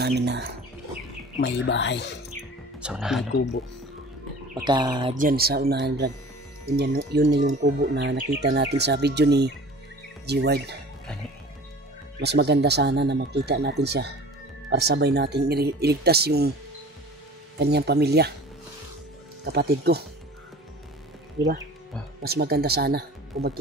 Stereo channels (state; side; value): normal; both; correlation 0.42